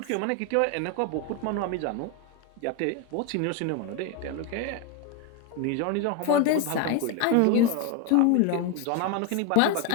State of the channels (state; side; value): different; both; correlation 0.02